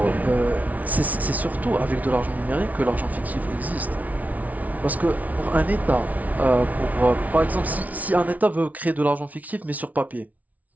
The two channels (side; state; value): left; late; 0.072 ms